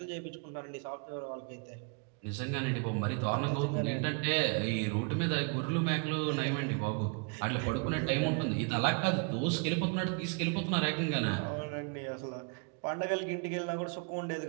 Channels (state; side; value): quieter; left; 34.8 dB